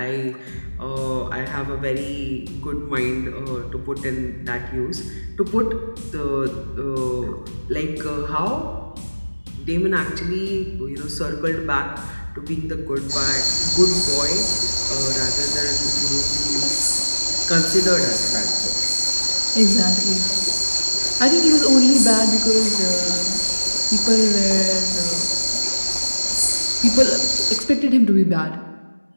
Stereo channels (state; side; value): inverted; both; correlation -1.00